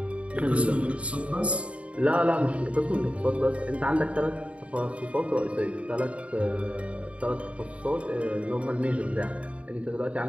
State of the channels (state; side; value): late; left; 0.063 ms